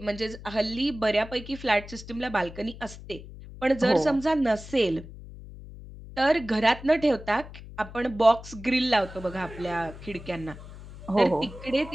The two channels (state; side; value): noise; left; hum, 15 dB below the sound